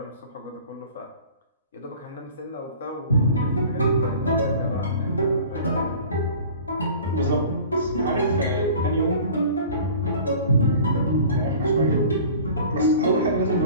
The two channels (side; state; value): both; inverted; correlation -0.44